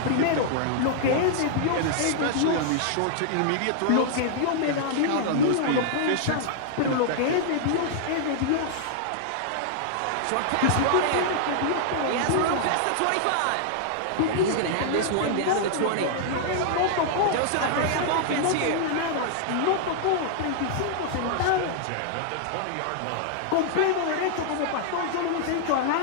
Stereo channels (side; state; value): both; different; correlation -0.01